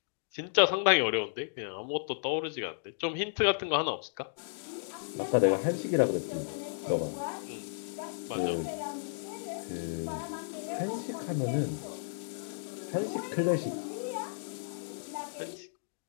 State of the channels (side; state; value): right; silent; digital silence